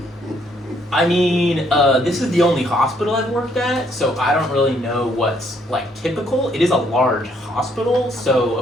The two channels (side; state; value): both; normal; correlation 0.68